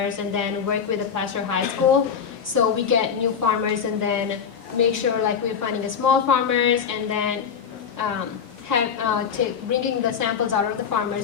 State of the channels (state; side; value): quieter; right; 7.0 dB